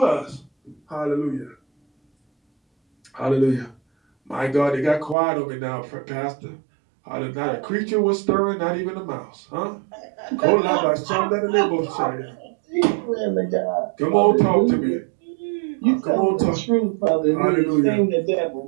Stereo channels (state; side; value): drops out; left; at 5.2 s